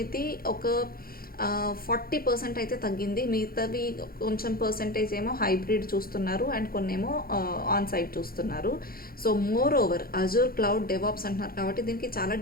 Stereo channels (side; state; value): right; late; 0.43 ms